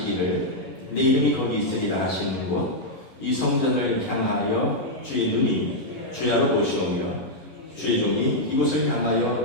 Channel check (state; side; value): late; right; 11 ms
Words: 내 이름이 거기 있으리라 하시는 곳 이 성전을 향하여 주의 눈이 주야로 보시오며 주의 종이 이곳을